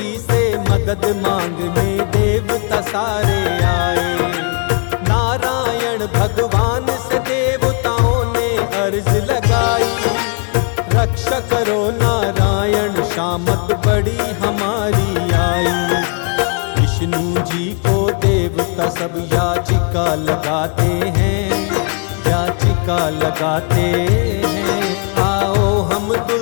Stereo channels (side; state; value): right; quieter; 38.2 dB